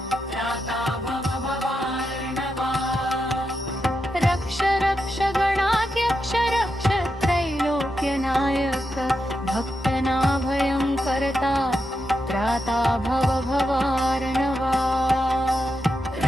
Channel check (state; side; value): normal; both; correlation 0.86